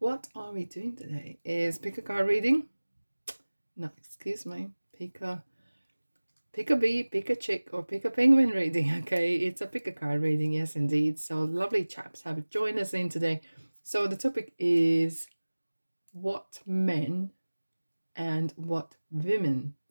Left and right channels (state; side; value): inverted; both; correlation -1.00